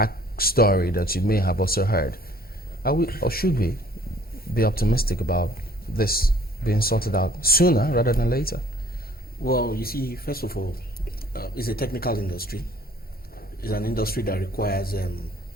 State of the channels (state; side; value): normal; both; correlation 0.56